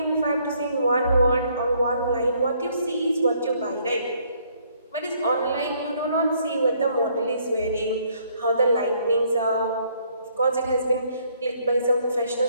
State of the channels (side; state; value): both; inverted; correlation -0.67